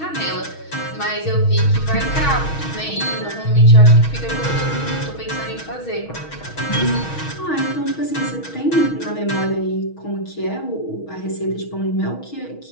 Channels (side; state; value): right; late; 6.3 ms